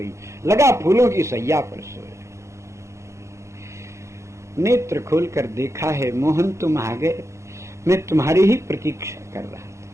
लगा फूलों की सैया पर सोए। नेत्र खोलकर देखा है, मोहन तुम आ गए, मैं तुम्हारी ही प्रतीक्षा कर रहा था।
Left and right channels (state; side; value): late; left; 0.14 ms